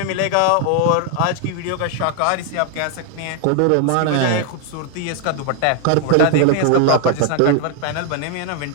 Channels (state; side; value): different; both; correlation 0.00